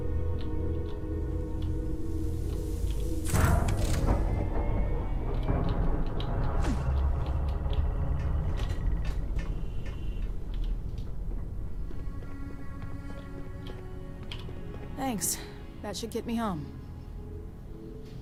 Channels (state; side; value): identical; both; correlation 1.00